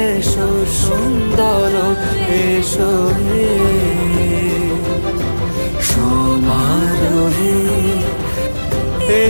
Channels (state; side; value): inverted; both; correlation -1.00